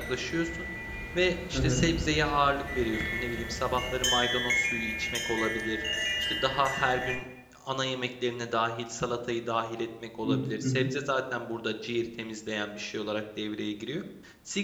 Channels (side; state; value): both; identical; correlation 1.00